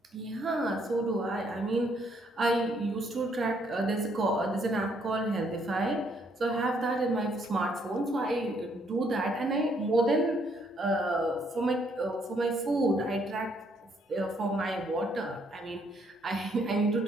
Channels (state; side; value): normal; both; correlation 0.69